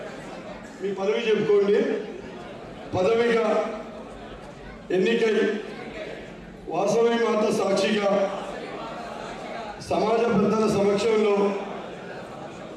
మీ పదవి చెప్పుకోండి, పదవిగా ఎన్నికై వాసవి మాత సాక్షిగా సమాజ పెద్దల సమక్షంలో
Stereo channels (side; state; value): both; identical; correlation 1.00